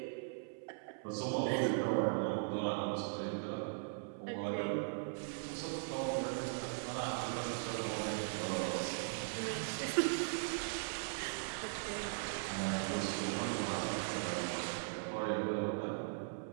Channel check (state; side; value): silent; left; 52 dB below the other